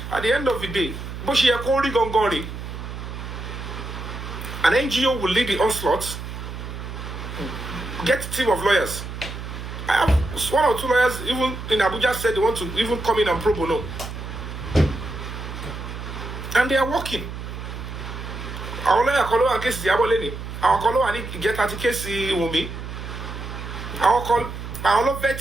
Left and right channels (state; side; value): noise; right; hum, 8 dB below the sound